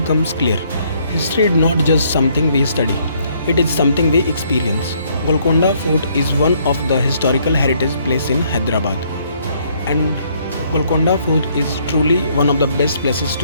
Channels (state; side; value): inverted; both; correlation -0.67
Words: clear. History is not just something we study, it is something we experience. Golconda Fort is one of the historical heritage places in Hyderabad, and Golconda Fort is truly one of the best places